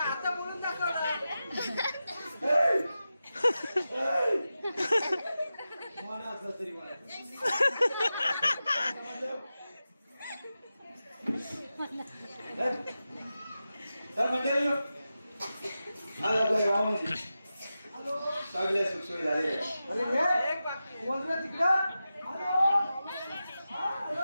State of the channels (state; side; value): inverted; both; correlation -0.92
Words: बोलून दाखवलं. मला असं तरी मला तर मंडळी आज आपल्या गावामध्ये सगळ्या सुखसोयी झालेल्या. अरे हे एक बाकी बोल रे तिकडं. हॅलो